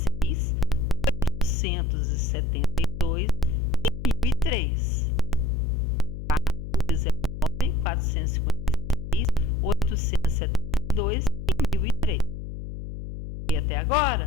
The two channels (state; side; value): noise; left; hum, 8 dB below the sound